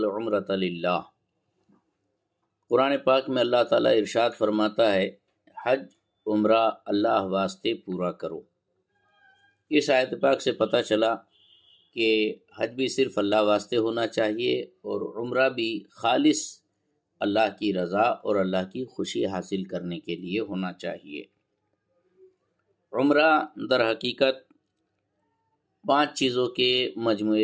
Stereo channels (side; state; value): both; identical; correlation 1.00